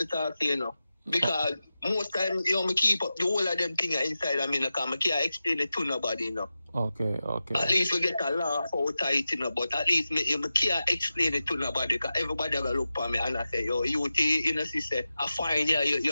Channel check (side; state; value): both; inverted; correlation -0.93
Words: talk to you, know. Because most times, you know, me keep up the whole of them things inside of me, because I can't explain it to nobody, you know. Okay. At least we get a laugh out of it, you know, but at least me can't explain it to nobody because everybody will look for me and I say, yo, you know, sister, I find